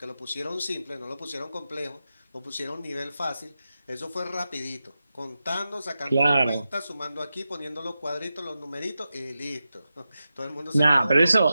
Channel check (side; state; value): both; inverted; correlation -0.91